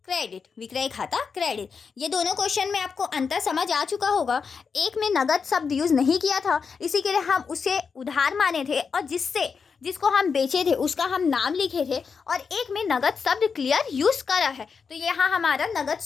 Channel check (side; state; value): right; quieter; 5.7 dB